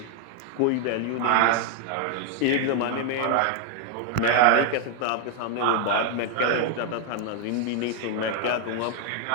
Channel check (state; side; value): different; both; correlation 0.00